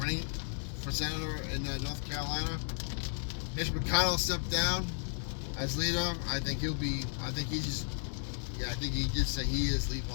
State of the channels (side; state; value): right; silent; 55 dB below the other